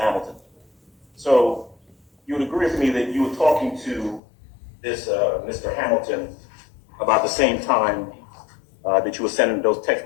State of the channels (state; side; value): drops out; right; at 4.2 s